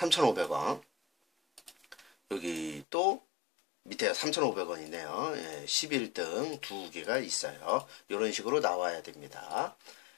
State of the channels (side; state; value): right; drops out; at 2.9 s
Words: 여기 또 밑에 3,500원이네요. 예, 11등 두 개가 있어요. 이런 식으로 나와야 됩니다.